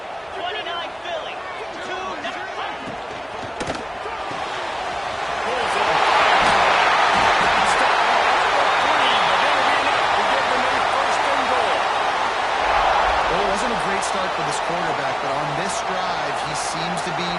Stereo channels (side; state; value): both; identical; correlation 1.00